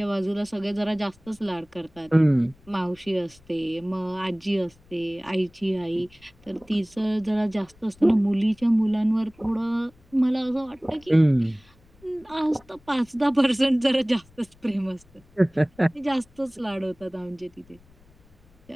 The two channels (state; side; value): noise; left; rumble, 29 dB below the sound